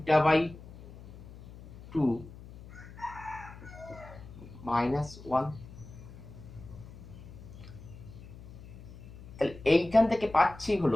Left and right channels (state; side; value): noise; left; hum, 16 dB below the sound